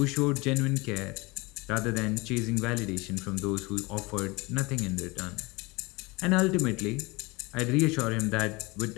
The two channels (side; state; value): right; quieter; 24.7 dB